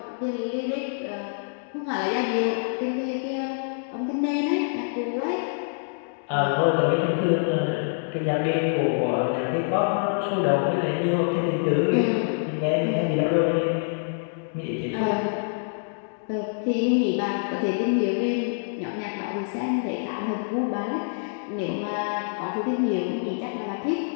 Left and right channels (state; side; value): silent; right; digital silence